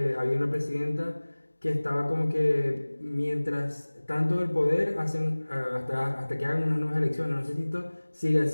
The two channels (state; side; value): inverted; both; correlation -1.00